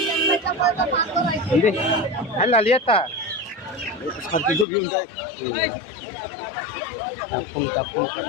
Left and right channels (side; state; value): right; drops out; at 4.7 s